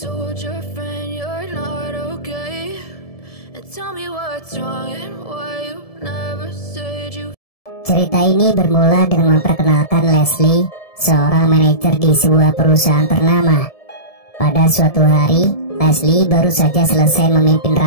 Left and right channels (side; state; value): right; late; 1.7 ms